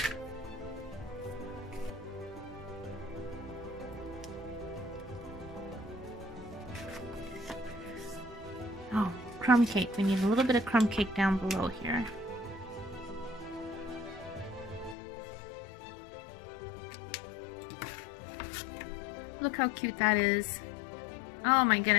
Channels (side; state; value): right; drops out; at 15.0 s